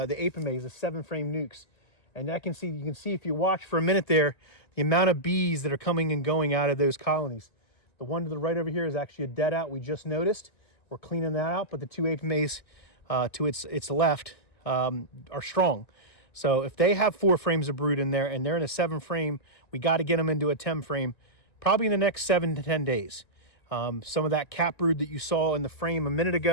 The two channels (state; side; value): late; right; 1.6 ms